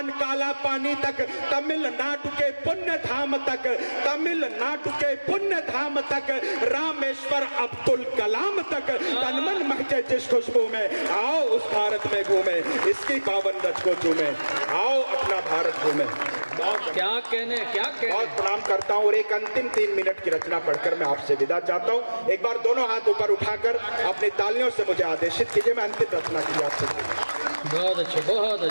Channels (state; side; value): inverted; both; correlation -1.00